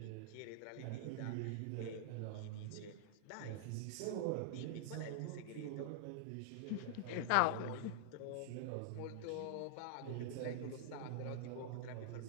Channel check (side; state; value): both; different; correlation -0.01